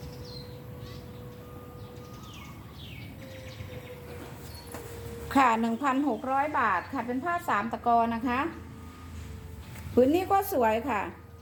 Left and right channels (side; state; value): both; identical; correlation 1.00